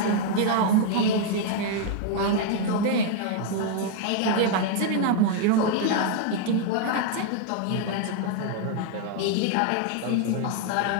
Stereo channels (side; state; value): both; different; correlation 0.00